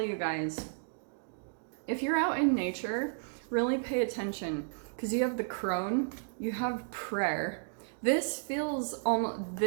you guys, if you're out in nature, really pay attention, because you have the crone, you have prayer. This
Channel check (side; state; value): left; silent; digital silence